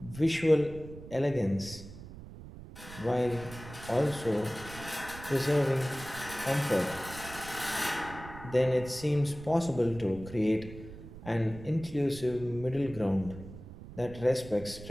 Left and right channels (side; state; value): right; noise; rumble, 14 dB below the sound